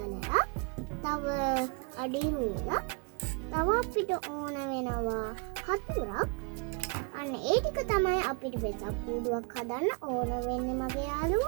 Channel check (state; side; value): quieter; left; 34.7 dB